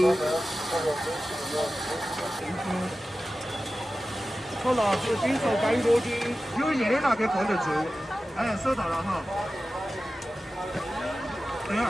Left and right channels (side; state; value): both; normal; correlation 0.95